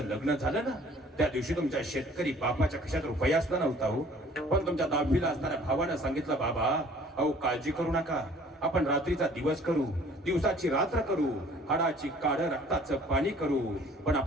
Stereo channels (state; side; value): normal; both; correlation 0.53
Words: लग्न झालं ना त्या दिवशी तुमच्या शेतकरी बापाच्या खिशात रुपया असला नव्हता हो, पण तुमच्या 10वीला असणाऱ्या भावानं सांगितलं, बाबा अहो काळजी करू नका, आपण रात्रीचा दिवस करू, दिवसाची रात्र करू, हाडाची काढ रक्ताचं पाणी करू, पण